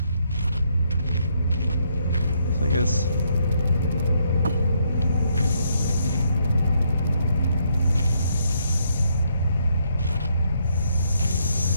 So I guess.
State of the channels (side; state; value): both; inverted; correlation -0.73